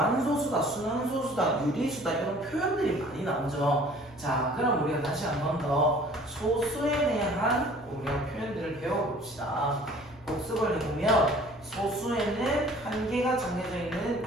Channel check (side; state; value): left; noise; hum, 24 dB below the sound